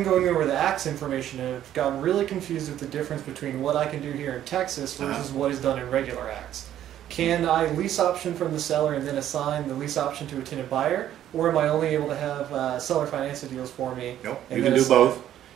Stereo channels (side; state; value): left; quieter; 11.5 dB